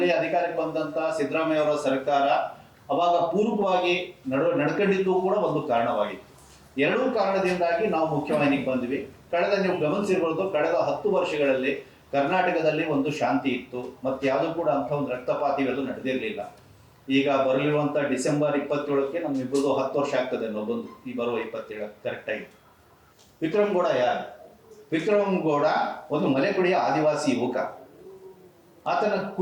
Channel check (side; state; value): both; identical; correlation 1.00